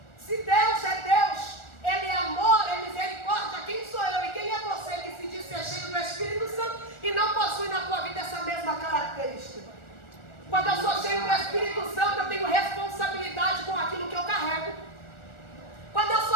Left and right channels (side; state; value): right; late; 1.4 ms